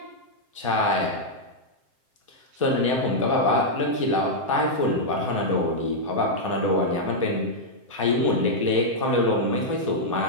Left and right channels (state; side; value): late; left; 7.6 ms